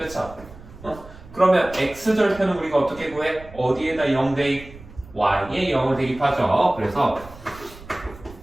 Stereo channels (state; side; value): noise; right; rumble, 19 dB below the sound